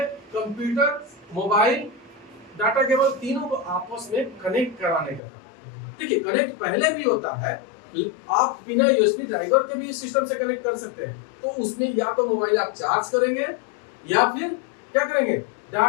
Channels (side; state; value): right; drops out; at 5.2 s